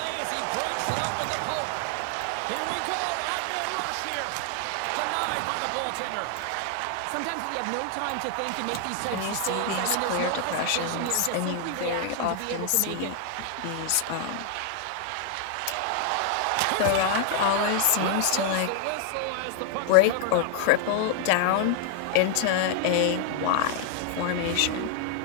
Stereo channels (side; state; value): both; different; correlation 0.00